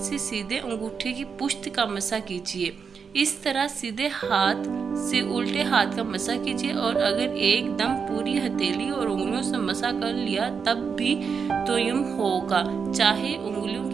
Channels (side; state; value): left; quieter; 6.0 dB